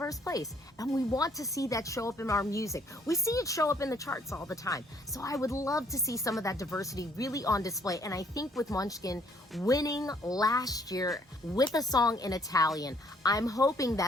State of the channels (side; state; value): both; normal; correlation 0.65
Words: place, and we want to see that show up in our music. We see it show up in the charts all the time. So I would love to see some of that diversity really on display. And I think with Måneskin winning last year with a song in Italian, I'm hoping